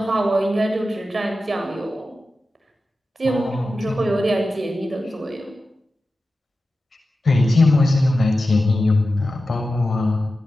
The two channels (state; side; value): normal; both; correlation 0.93